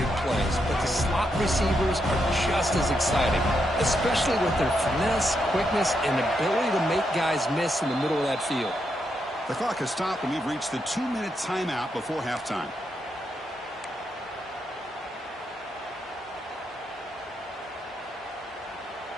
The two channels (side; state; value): both; normal; correlation 0.81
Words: plays, but the slot receivers are just as exciting, especially with their finesse, quickness, and ability to make guys miss in the middle of that field. The clock has stopped, and we've reached the 2-minute timeout before halftime.